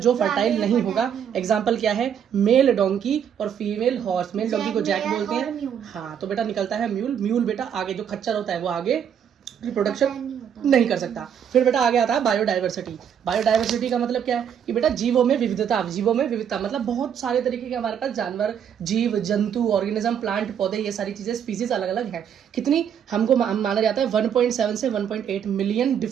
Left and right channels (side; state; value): left; quieter; 8.5 dB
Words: फर्टाइल नहीं होगा। एग्जाम्पल क्या है, मेल डोंकी और फीमेल हॉर्स। मेल डोंकी को जैक बोलते हैं, हाँ, तो बेटा निकलता है म्यूल। म्यूल बेटा आगे जो खच्चर होता है वो आगे रिप्रोडक्शन नहीं कर सकता। फिर बेटा आगे आता है बायोडाइवर्सिटी। बायोडाइवर्सिटी का मतलब क्या है कि बेटा जीवों में विविधता। जीवों में विविधता मतलब बहुत सारे तरीके के हमारे पास जानवर, जीव जंतु, ऑर्गेनिज्म, प्लांट, पौधे, ये सारी चीजें, स्पीसीज अलग अलग हैं। कितनी हमको माना जाता है 1.7 से 1.8 मिलियन